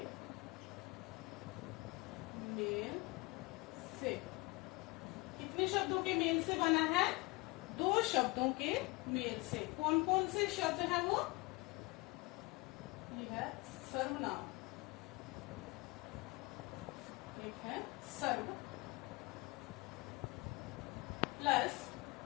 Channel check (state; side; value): quieter; right; 25.0 dB